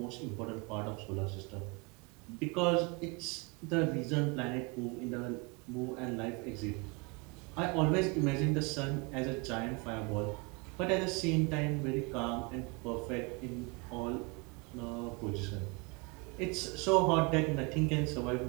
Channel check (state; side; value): quieter; left; 29.3 dB